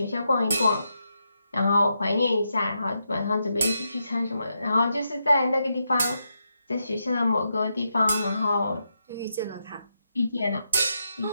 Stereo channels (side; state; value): both; inverted; correlation -0.83